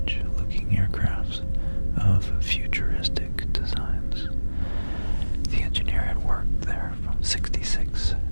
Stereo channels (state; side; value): inverted; both; correlation -1.00